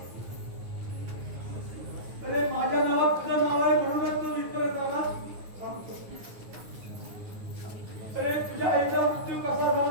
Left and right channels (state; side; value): late; left; 9.4 ms